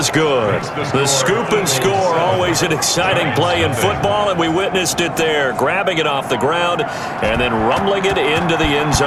good. The scoop and score, always an exciting play in football, and we witnessed it there, grabbing it off the ground and then rumbling it into the end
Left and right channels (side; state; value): both; identical; correlation 1.00